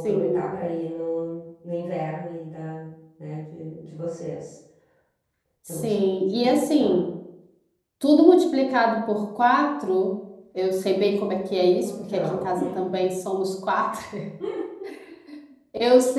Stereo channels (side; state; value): both; identical; correlation 1.00